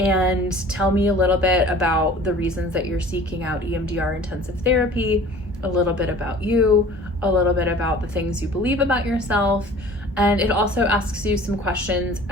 tell me a little bit about the reasons that you're seeking out EMDR intensive therapy, a little bit about you, a little bit about the things you believe about yourself, and it also asks you some questions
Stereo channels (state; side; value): normal; both; correlation 0.46